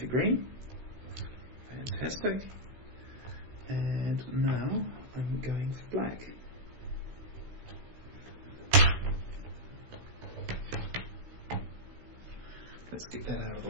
green. Fantastic. And now I'm going for black. Let's get that out of the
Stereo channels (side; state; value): left; late; 16 ms